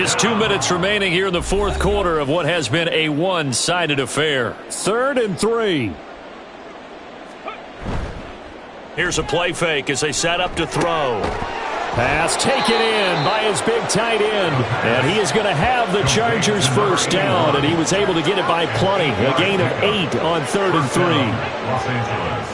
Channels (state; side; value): identical; both; correlation 1.00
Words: 2 minutes remaining here in the fourth quarter of what has been a one-sided affair. 3rd and 3. Here's a play fake as they set up to throw. Pass taken in by his big tight end. And he is going to have the Chargers first down, and he was able to get it by plenty. A gain of 8 on 3rd and 3. Los Angeles.